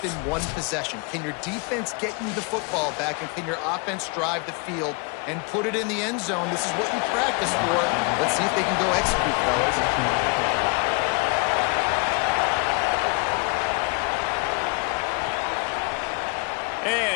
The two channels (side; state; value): right; quieter; 32.6 dB